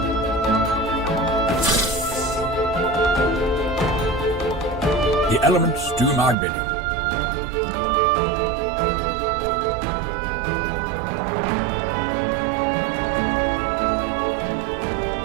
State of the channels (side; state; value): left; drops out; at 6.4 s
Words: The elements do my bidding.